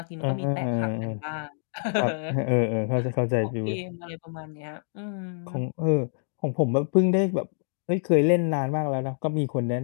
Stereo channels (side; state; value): right; silent; digital silence